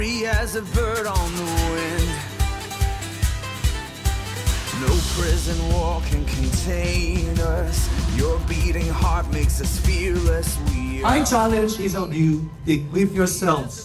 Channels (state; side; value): identical; both; correlation 1.00